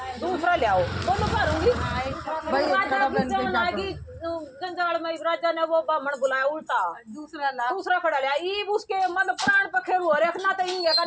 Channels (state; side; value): identical; both; correlation 1.00